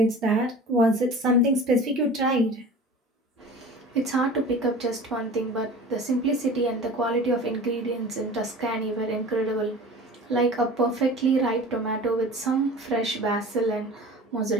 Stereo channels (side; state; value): both; normal; correlation 0.39